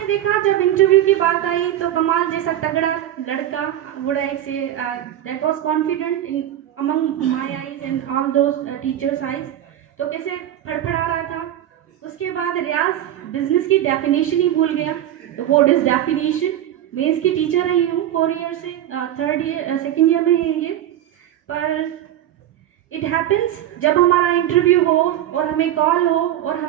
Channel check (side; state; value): left; quieter; 12.0 dB